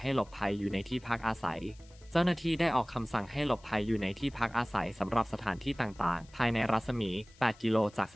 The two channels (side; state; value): left; noise; hiss, 27 dB below the sound